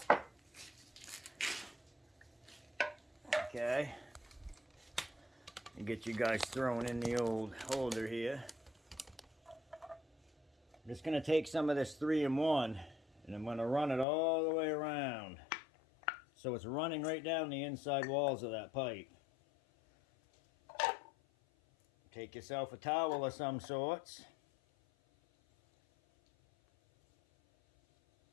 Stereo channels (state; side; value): drops out; right; at 14.1 s